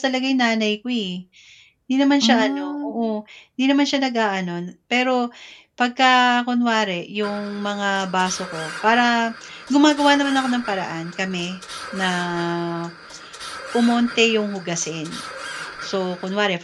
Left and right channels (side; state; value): both; identical; correlation 1.00